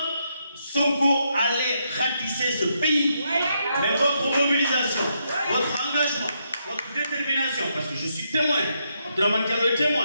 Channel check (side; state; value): both; inverted; correlation -0.79